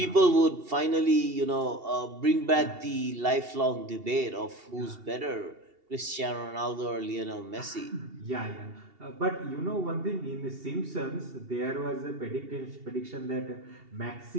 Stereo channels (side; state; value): left; late; 2.7 ms